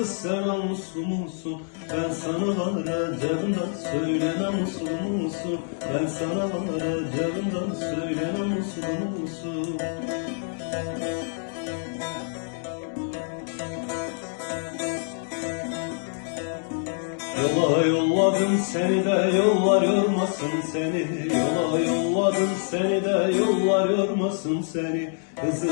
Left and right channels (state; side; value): silent; right; 61 dB below the other